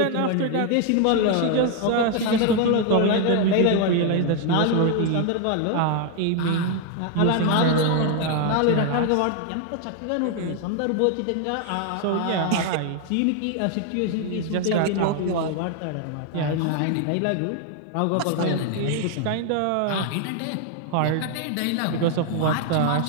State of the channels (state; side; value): different; both; correlation 0.00